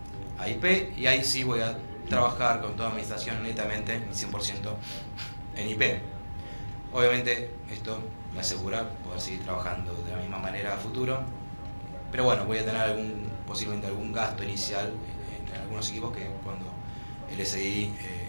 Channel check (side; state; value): both; inverted; correlation -1.00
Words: IP, y ahí sí voy a trabajar con toda mi estación netamente 100% en IP. Obviamente esto me asegura poder seguir trabajando de la misma manera a futuro, pero bueno, voy a tener posiblemente algún gasto inicial en algunos equipos que cuando el SDI